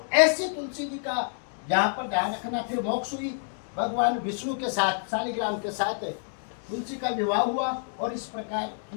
ऐसी तुलसी जी का यहाँ पर ध्यान रखना, फिर मोक्ष हुई, भगवान विष्णु के साथ, शालिग्राम के साथ तुलसी का विवाह हुआ और इस प्रकार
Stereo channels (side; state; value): right; silent; digital silence